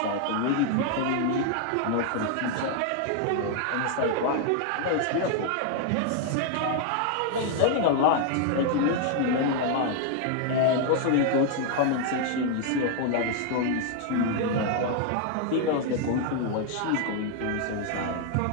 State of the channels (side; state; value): both; different; correlation 0.00